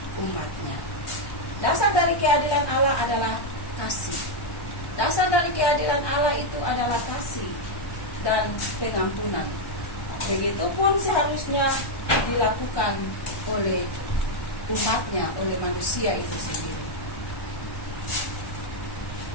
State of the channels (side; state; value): right; late; 1.1 ms